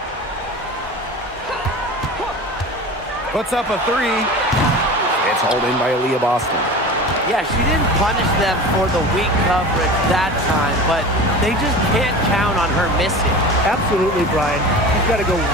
Puts up a 3. It's hauled in by Aaliyah Boston. Yeah, she didn't punish them for the weak coverage that time, but they just can't count on her missing. Absolutely, Brian. She's got to go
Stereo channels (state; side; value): normal; both; correlation 0.34